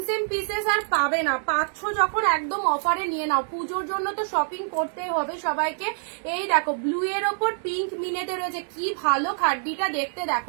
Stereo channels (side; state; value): left; silent; digital silence